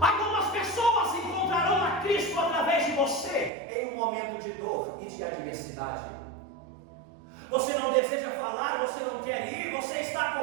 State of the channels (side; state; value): left; drops out; at 3.5 s